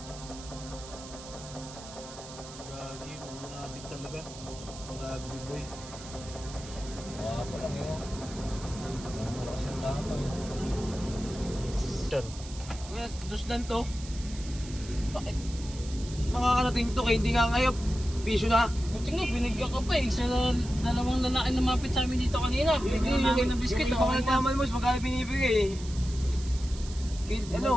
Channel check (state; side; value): noise; right; hiss, 15 dB below the sound